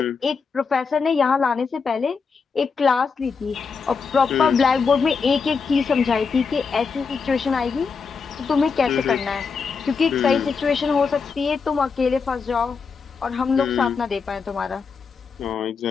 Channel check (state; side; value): quieter; right; 5.3 dB